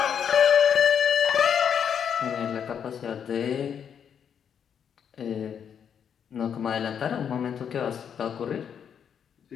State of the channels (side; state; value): right; quieter; 7.9 dB